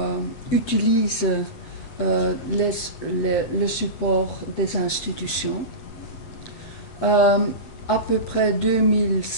utilisent le support des institutions. À peu près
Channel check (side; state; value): right; late; 8.2 ms